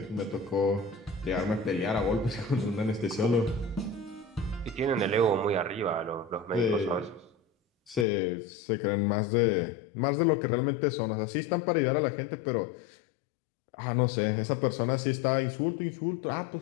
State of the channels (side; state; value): right; drops out; at 8.1 s